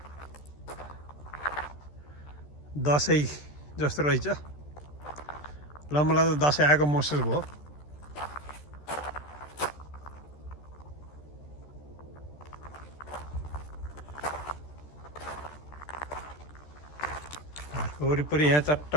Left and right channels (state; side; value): late; right; 13 ms